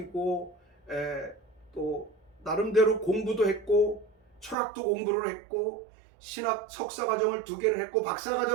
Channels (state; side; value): drops out; left; at 4.5 s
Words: 또 나름대로 공부도 했고 철학도 공부를 했고 신학 석사과정을 2개를 했고